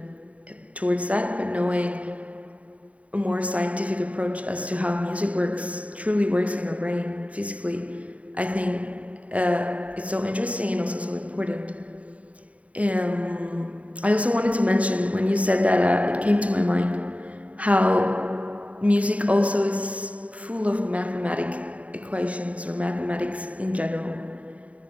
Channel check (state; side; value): late; left; 0.067 ms